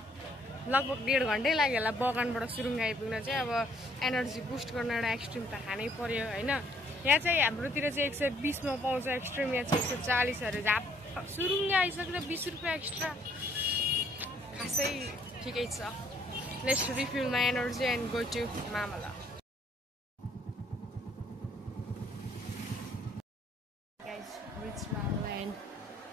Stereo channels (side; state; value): both; normal; correlation 0.65